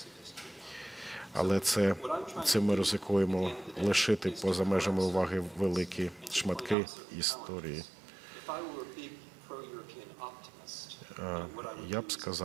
Але цим ми ризикуємо лишити поза межами уваги великі шматки історії. Я б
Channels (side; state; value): left; drops out; at 6.8 s